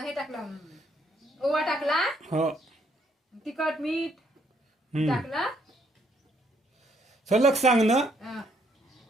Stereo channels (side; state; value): both; normal; correlation 0.70